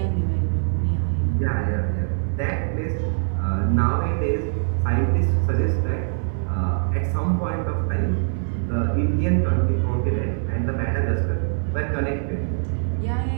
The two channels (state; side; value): silent; left; 63 dB below the other